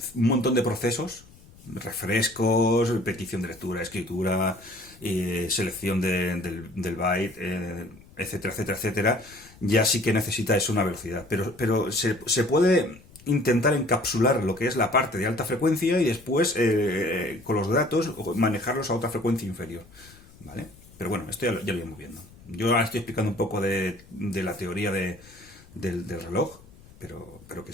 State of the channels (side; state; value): left; noise; rumble, 24 dB below the sound